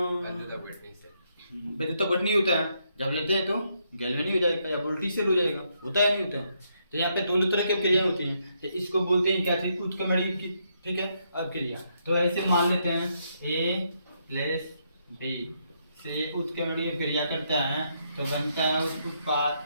विद्युत अपघटनी होता है, जब लेते हैं तो गैल्वेनी हो जाएगा या वोल्टी सेल हो जाएगा, होता है नहीं होता है। तो यहाँ पे दोनों तरह की क्रिया होती हैं, तो इसको बोलते हैं क्या चीज, उत्क्रमणीय की, ठीक है, अभिक्रिया। तो ऐसे मान लेते हैं ए प्लस बी से उत्क्रमणीय क्रिया करता है तो बनता है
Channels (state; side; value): inverted; both; correlation -0.77